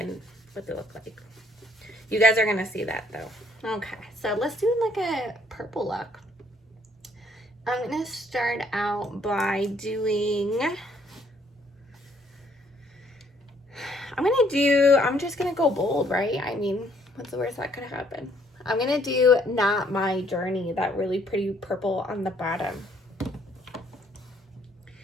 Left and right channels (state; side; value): normal; both; correlation 0.65